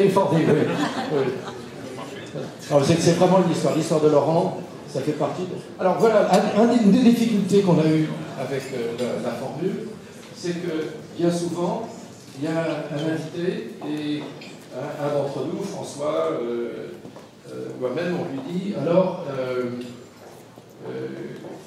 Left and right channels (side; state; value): both; identical; correlation 1.00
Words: oui. C'est vraiment l'histoire de Laurent, ça fait partie de... Alors voilà, une des difficultés qu'on a eues avec la formule, c'est que bien souvent, il y a un invité et un d'entre nous, François, moi-même, on lui dit, alors,